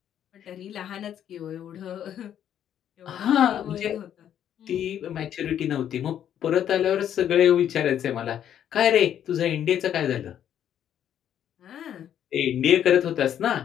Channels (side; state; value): right; quieter; 10.0 dB